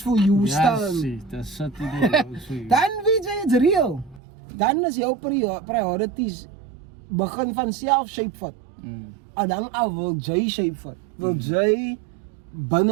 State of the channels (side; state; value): left; drops out; at 4.2 s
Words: for you staan, the city that works for you. Dan weet jy it's real. Dan is jou priorities begin van self shape vat. En dan wil jy shape vat. Wil jy